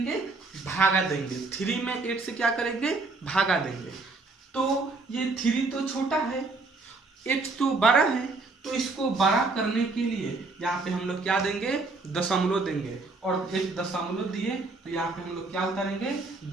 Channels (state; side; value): quieter; left; 3.6 dB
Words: भागा देंगे। 3 में 8 से क्या करेंगे, भागा देंगे। तो ये 3 तो छोटा है, 8 तो बड़ा है, तो इसको बड़ा करने के लिए यहाँ पे हम लोग क्या देंगे, दशमलव देंगे। और एक दशमलव दिए तो यहाँ पे हम लोग क्या उतारेंगे,